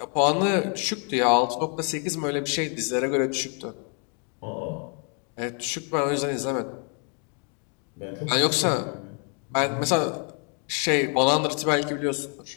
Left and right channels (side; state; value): right; quieter; 39.0 dB